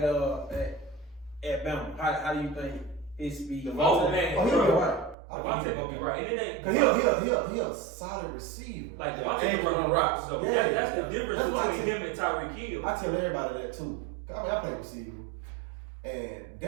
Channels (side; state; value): left; drops out; at 5.2 s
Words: at Bama? How do you think his speed? Oh man, Oh, he'll be right. Devontae gonna be right. And it ain't Cause he a solid receiver. like Yeah, Devontae and can run routes. So Yeah. that's the difference That's why I between say- him and Tyreek Hill. I tell everybody that too. I mean, I play receiver, and